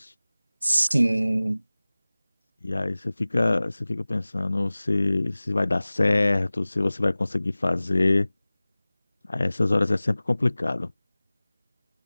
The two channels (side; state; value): both; inverted; correlation -0.99